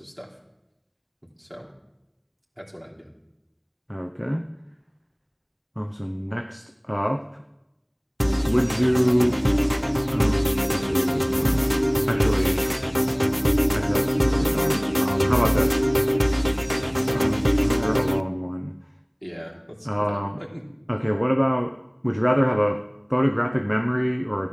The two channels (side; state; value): both; identical; correlation 1.00